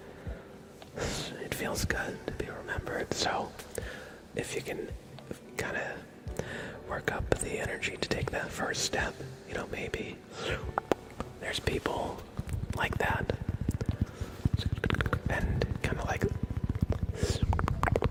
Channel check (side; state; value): both; identical; correlation 1.00